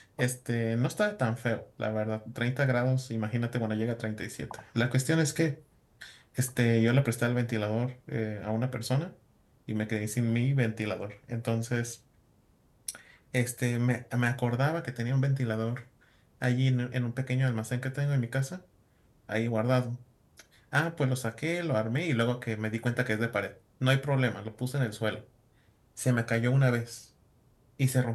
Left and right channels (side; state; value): both; identical; correlation 1.00